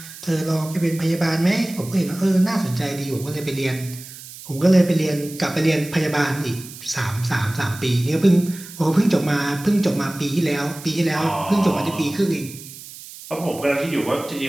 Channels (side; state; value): right; noise; hiss, 15 dB below the sound